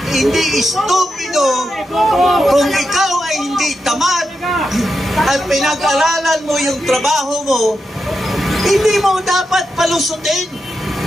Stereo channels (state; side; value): normal; both; correlation 0.87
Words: hindi stupido, kung ikaw ay hindi tamad at pinag-aralan mo yung trabaho mo, hindi mo dapat palusutin